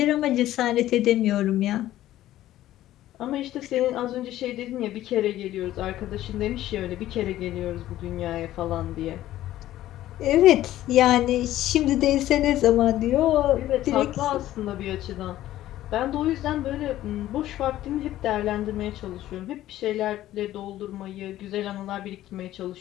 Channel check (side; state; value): right; quieter; 14.0 dB